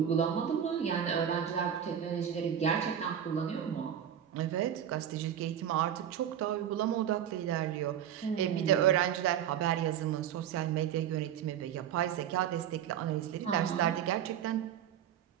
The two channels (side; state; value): left; quieter; 9.6 dB